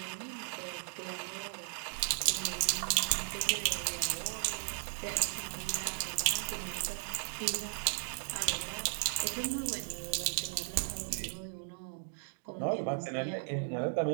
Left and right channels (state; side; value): silent; left; digital silence